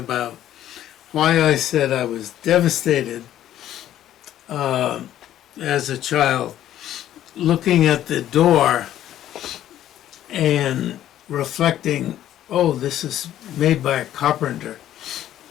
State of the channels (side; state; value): right; quieter; 12.1 dB